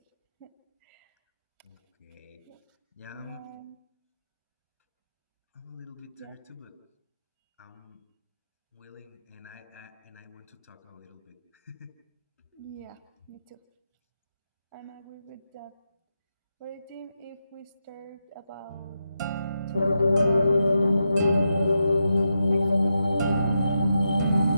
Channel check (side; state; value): both; inverted; correlation -0.86